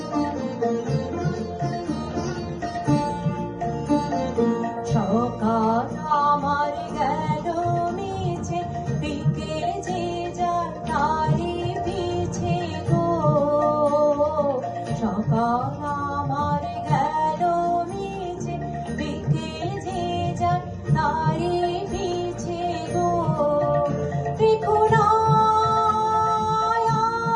সকাল আমার গেল মিছে, বিকেল যে যার তারি পিছে গো। সকাল আমার গেল মিছে, বিকেল যে যার তারি পিছে গো। দেখো না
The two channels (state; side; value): identical; both; correlation 1.00